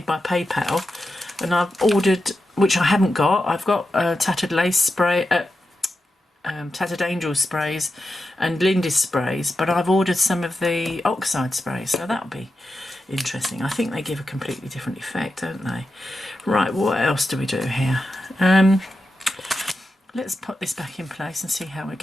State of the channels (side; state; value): both; normal; correlation 0.89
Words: by PayPal, and I've ordered, which I haven't got. I've got Tattered Lace spray, Tattered Angel sprays and Lindy's sprays, but I've ordered some of the oxide sprays, so that'll be interesting. I think they give a completely different effect, don't they? Right, what else do we do here? Let's put this back in place and see how we're